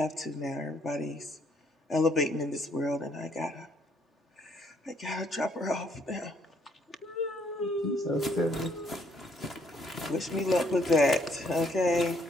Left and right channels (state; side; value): normal; both; correlation 0.68